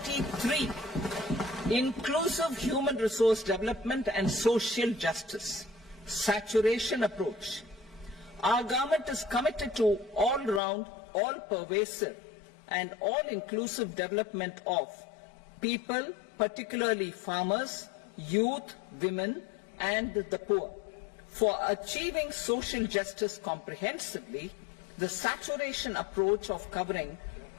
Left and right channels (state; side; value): drops out; right; at 10.6 s